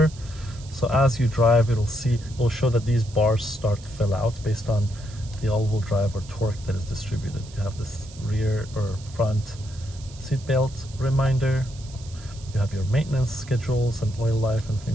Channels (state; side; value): noise; right; hiss, 20 dB below the sound